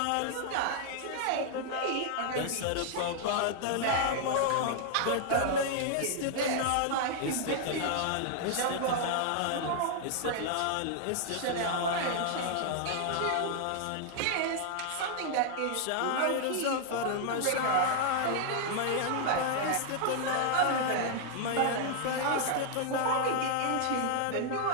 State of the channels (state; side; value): different; both; correlation -0.01